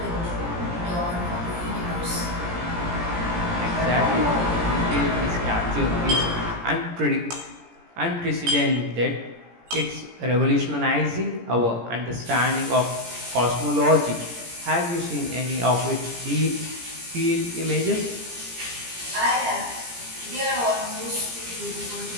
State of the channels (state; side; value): late; left; 17 ms